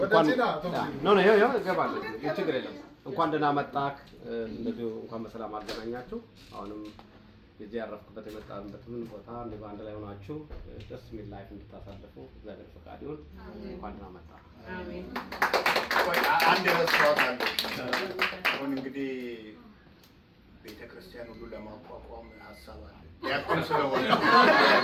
ችግር የለም። እንኳን ደህና መጣህ። እንደዚሁ እንኳን በሰላም አገናኛችሁ። አሁንም የዚህ ያረፍኩበት የመጣንበትን ቦታ እንደው አንድ ላይ ሆናችሁ ደስ የሚል ላይፍ እንድታሳልፉ እግዚአብሔር ፈቃድ ይሁን። እንኳን ደህና መጣህ። አሜን። አንድ ረስቷት አለ። አሁን እንግዲህ ቤተክርስቲያን ሁሉ ለማቋቋም ሀሳብ አለ። ዲያቆን ስለሆነ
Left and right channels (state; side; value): identical; both; correlation 1.00